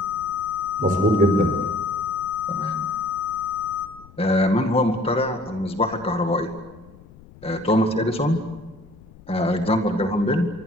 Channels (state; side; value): noise; left; rumble, 22 dB below the sound